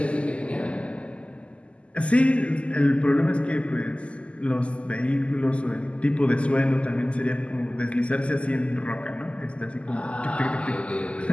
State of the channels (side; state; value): right; late; 0.057 ms